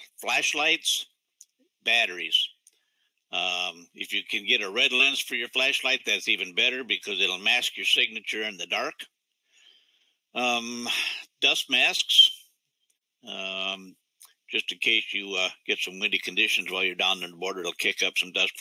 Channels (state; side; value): identical; both; correlation 1.00